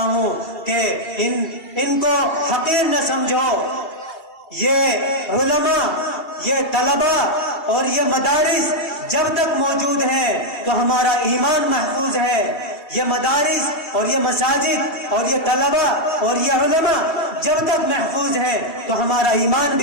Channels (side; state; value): right; late; 2.7 ms